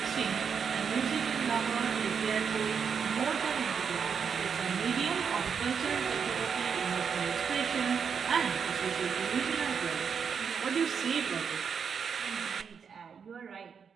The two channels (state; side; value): quieter; left; 6.6 dB